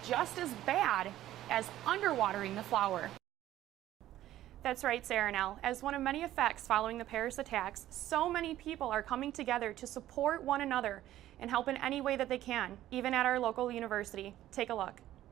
just as bad as underwatering the flower. That's right, Sarah Nell. As one of many effects following the Paris attacks, so many people are coming together to support one another and help in any way that they can, even at our local university. Take a look.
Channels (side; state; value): left; quieter; 13.6 dB